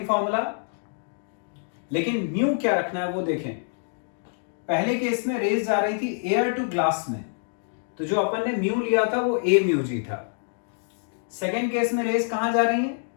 फॉर्मूला, लेकिन म्यू क्या रखना है वो देखें। पहले केस में रेज जा रही थी एयर टू ग्लास में, तो जो अपन ने म्यू लिया था वो ए म्यू जी था। सेकेंड केस में रेज कहां जा रही है,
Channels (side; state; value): right; silent; digital silence